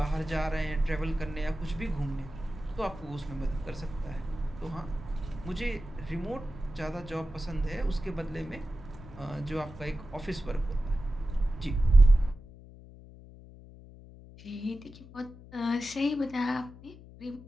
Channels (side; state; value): left; noise; hum, 18 dB below the sound